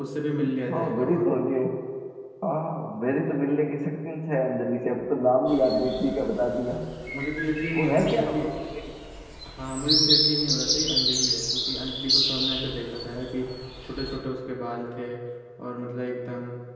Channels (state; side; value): identical; both; correlation 1.00